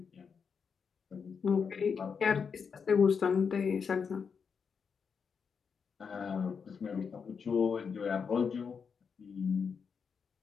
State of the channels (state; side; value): quieter; right; 6.1 dB